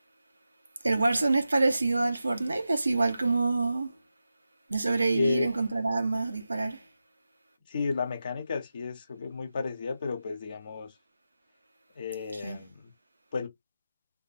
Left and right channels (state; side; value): inverted; both; correlation -0.91